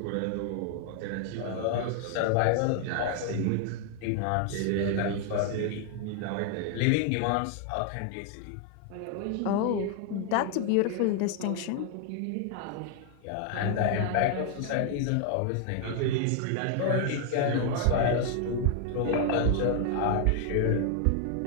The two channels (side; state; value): both; different; correlation 0.00